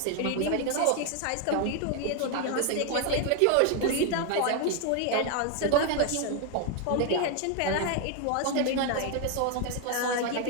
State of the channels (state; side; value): different; both; correlation 0.01